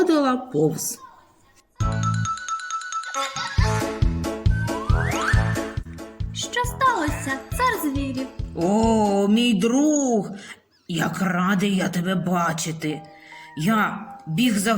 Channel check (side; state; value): both; identical; correlation 1.00